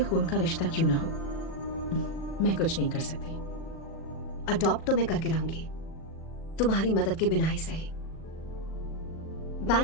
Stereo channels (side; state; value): right; late; 38 ms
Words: का रिश्ता क्यों ना हो। मैं कुछ नहीं कर सकती। अडॉप्ट तो मैं करके रहूंगी, तुम्हारी मदद के बिना ही सही।